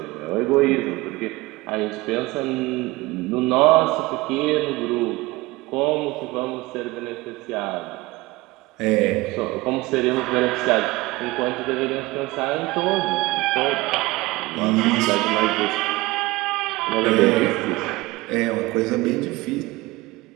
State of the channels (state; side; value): quieter; left; 21.0 dB